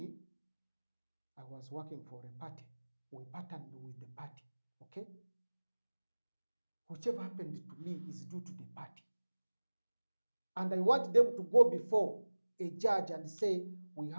I was working for a party. We partnered with the party. Okay. Whichever happened to me is due to the party. And I want them to go before a judge and say, we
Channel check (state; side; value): inverted; both; correlation -1.00